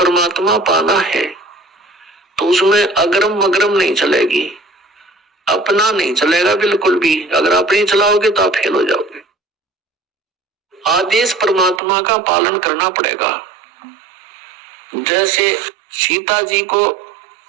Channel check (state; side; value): drops out; left; at 11.8 s